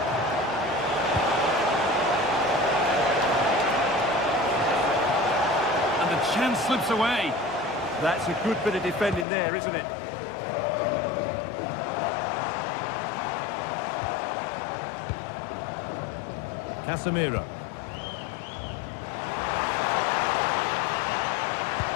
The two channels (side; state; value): right; drops out; at 9.2 s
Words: And the chance slips away. That's a good bit of defending there, isn't it? Casemiro.